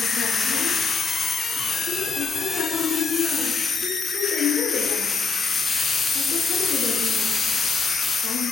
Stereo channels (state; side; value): quieter; right; 4.6 dB